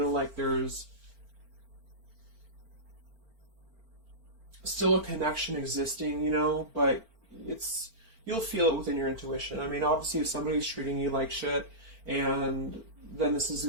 like there's still a connection existing, but you'll feel it within your intuition. Obviously, if somebody's treating you like shit, and then this is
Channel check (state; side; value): late; left; 4.4 ms